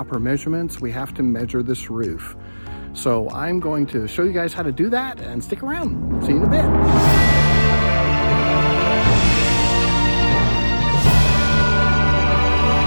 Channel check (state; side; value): inverted; both; correlation -1.00